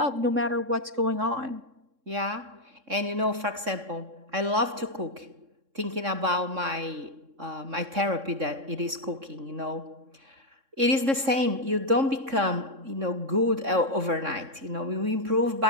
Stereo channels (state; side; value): late; left; 3.6 ms